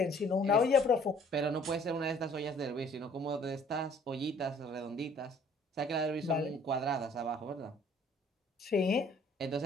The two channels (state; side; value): normal; both; correlation 0.57